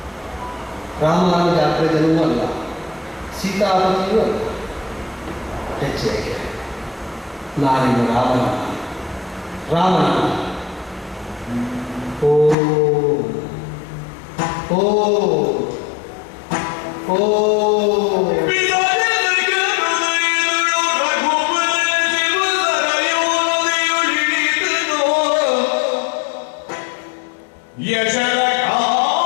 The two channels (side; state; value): right; drops out; at 12.6 s